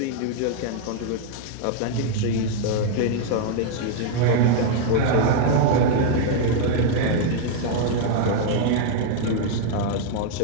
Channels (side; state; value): both; different; correlation 0.00